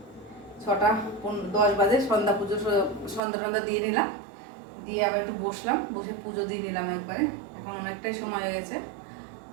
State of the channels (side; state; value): left; drops out; at 3.2 s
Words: 6:10 বাজে সন্ধ্যা পুজো, সন্ধ্যা দিয়ে নিলাম, দিয়ে আবার একটু বসলাম, বসে পুজো দিয়ে নিলাম একবারে। এখন অনেকটাই সময় হয়ে গেছে,